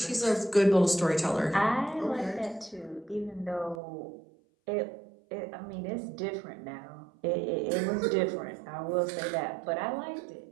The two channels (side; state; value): left; drops out; at 3.8 s